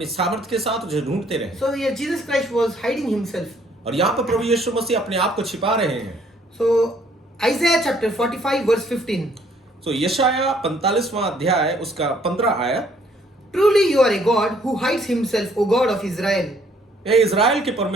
सामर्थ्य के साथ उसे ढूंढते रहे। So here Jesus Christ was hiding himself. और यहाँ पर प्रभु यीशु मसीह अपने आप को छिपा रहे हैं। So Isaiah chapter 45 verse 15. तो यशाया 45वां अध्याय उसका 15 आयत। Truly you are a God who hides himself, O God of Israel. हे इज़राइल के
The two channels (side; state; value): both; normal; correlation 0.64